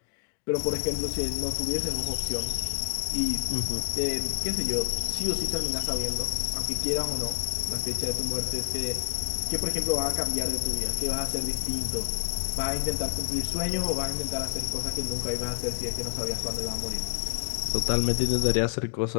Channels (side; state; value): right; quieter; 33.1 dB